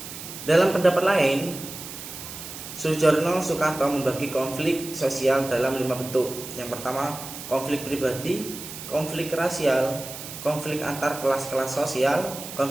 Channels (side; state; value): right; noise; hiss, 11 dB below the sound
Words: Dalam pendapat lain, Soejarno Sukanto membagi konflik sosial dalam 5 bentuk. Yang pertama, konflik pribadi, konflik rasial, konflik antar kelas-kelas sosial,